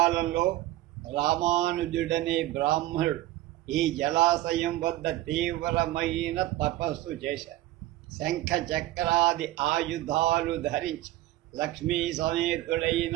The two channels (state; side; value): quieter; left; 15.9 dB